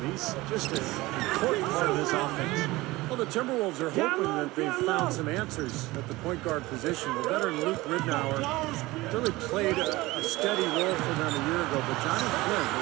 He's just an important part of this offense. Well, the Timberwolves are hoping that they've found some answers at the point guard position. The veteran Luke Ridnour really played a steady role for them a year ago, but Johnny Flynn,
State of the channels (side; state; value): left; quieter; 20.0 dB